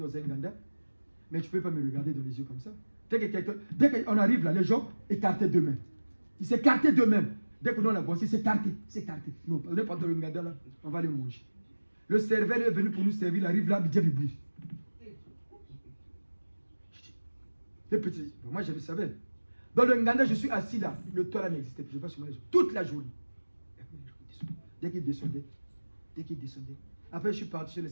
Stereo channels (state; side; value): inverted; both; correlation -1.00